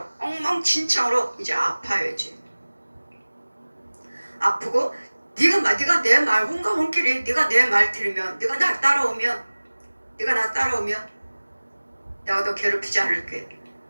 엉망진창으로 이제 아파야지. 아프고 네가 내 말 혼과 혼끼리 네가 내 말 들으면 네가 나 따라오면 내가 너 괴롭히지 않을게.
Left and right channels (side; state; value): both; inverted; correlation -1.00